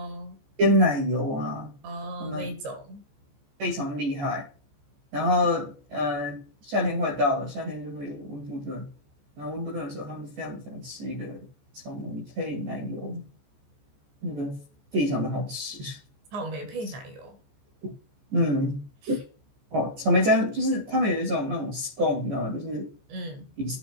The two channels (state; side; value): late; left; 14 ms